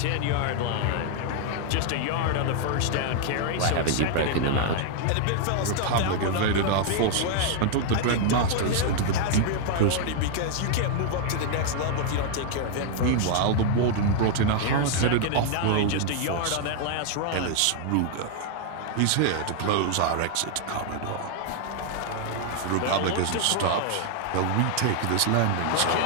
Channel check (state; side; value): different; both; correlation 0.00